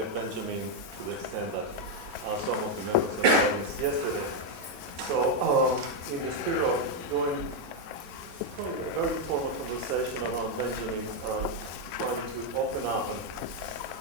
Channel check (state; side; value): late; left; 6.5 ms